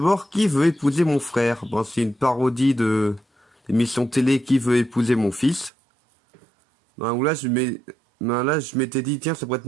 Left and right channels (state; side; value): drops out; left; at 5.7 s